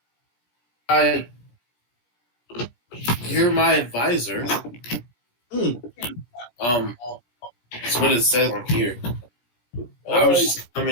You're my advisor. That's what it says on here. I was just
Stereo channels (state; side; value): late; right; 17 ms